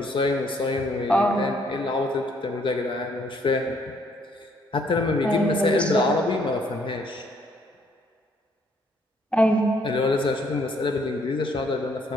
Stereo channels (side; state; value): both; normal; correlation 0.67